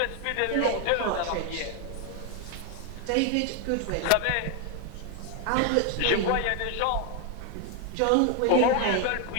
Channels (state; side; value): different; both; correlation 0.01